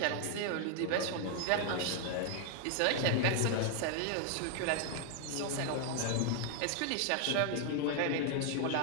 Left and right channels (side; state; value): both; different; correlation 0.00